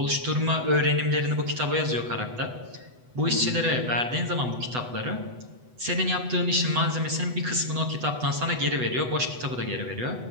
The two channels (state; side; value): late; left; 8.0 ms